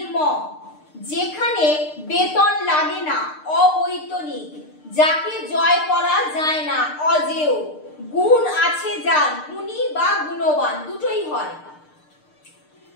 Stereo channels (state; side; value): late; right; 6.6 ms